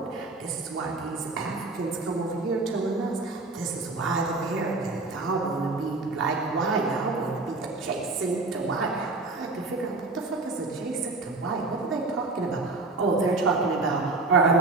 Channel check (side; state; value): left; quieter; 3.4 dB